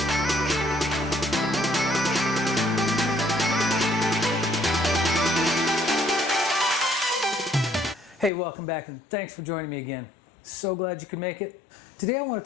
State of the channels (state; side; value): drops out; right; at 8.3 s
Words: Hey, welcome back and thanks for joining me again. So glad you could make it. Today I want